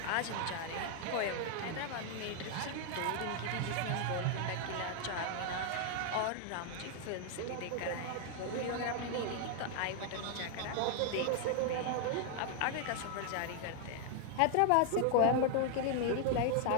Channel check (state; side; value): different; both; correlation 0.00